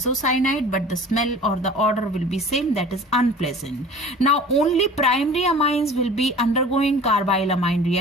but the smell or the odor will be same, that is unpleasant. Now only primary amines will be undergoing carbyl amine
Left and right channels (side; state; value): both; normal; correlation 0.43